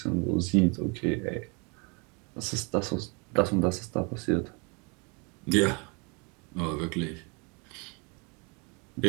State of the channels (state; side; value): quieter; left; 32.1 dB